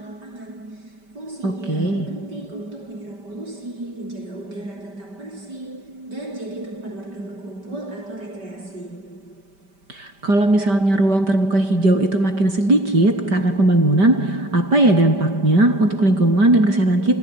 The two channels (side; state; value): left; late; 5.1 ms